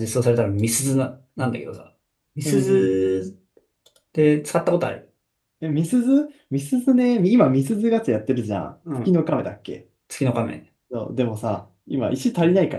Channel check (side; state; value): both; identical; correlation 1.00